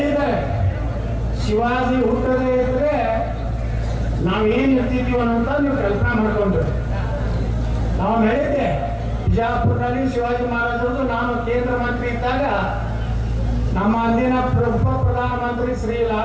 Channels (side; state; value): both; identical; correlation 1.00